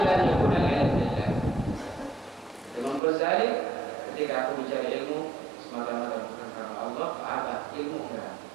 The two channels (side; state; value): left; drops out; at 3.0 s